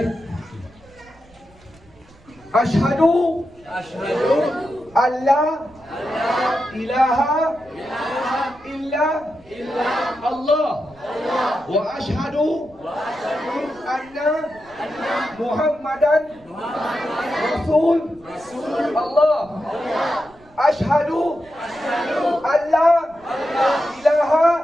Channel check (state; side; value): noise; right; rumble, 27 dB below the sound